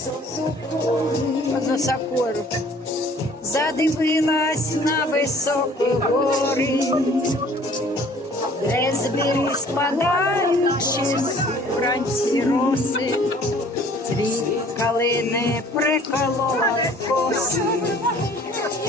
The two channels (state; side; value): normal; both; correlation 0.53